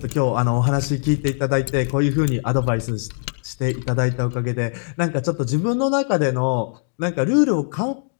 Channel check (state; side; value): silent; right; digital silence